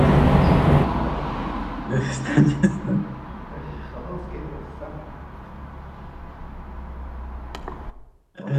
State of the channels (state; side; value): identical; both; correlation 1.00